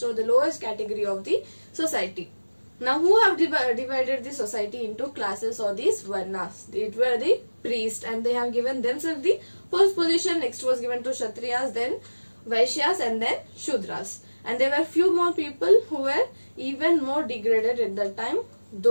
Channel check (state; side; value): inverted; both; correlation -1.00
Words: or the lowest category of the society. Now, who have divided the society into classes or these varnas? It were the priests, and they have given themselves the first position. Next was given to Kshatriyas, then Vaishyas, and then Shudras. And there were few more people who were even more degraded at that time.